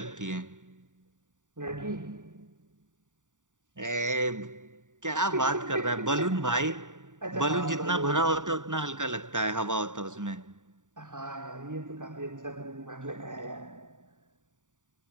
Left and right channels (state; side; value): late; left; 0.86 ms